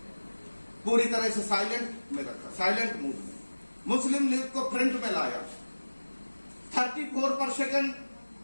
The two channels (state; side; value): inverted; both; correlation -1.00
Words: पूरी तरह से साइलेंट में रखा, साइलेंट मूड में। मुस्लिम लीग को फ्रंट में लाया। 34%